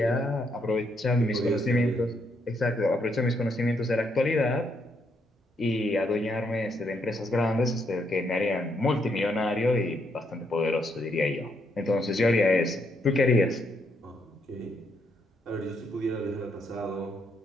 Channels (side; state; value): both; normal; correlation 0.75